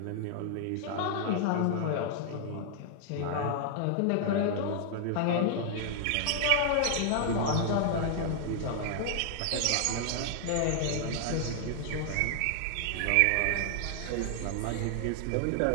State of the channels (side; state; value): both; different; correlation 0.00